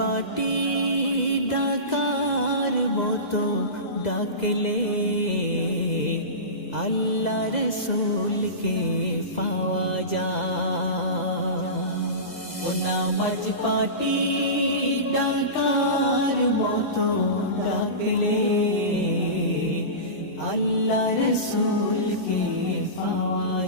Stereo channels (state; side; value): late; right; 2.0 ms